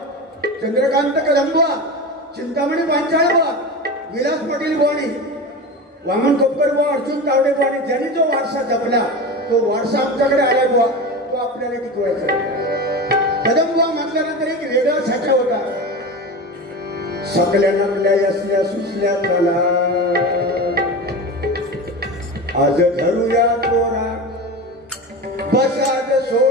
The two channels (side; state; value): both; normal; correlation 0.27